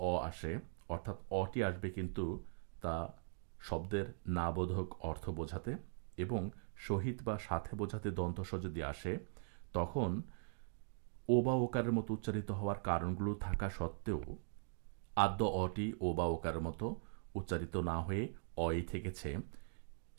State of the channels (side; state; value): left; silent; digital silence